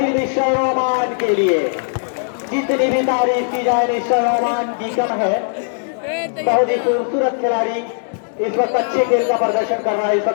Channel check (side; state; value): right; silent; digital silence